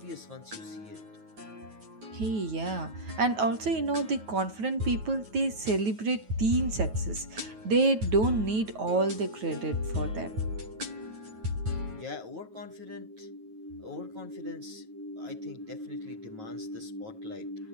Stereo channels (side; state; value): left; late; 9.3 ms